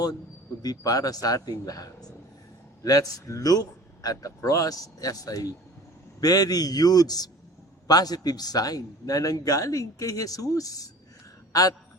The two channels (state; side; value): normal; both; correlation 0.43